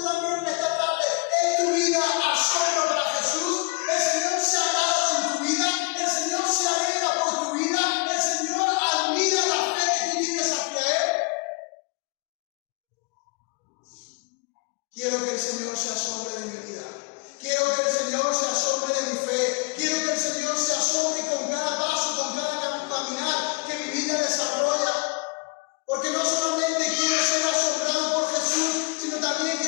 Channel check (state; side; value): quieter; right; 28.8 dB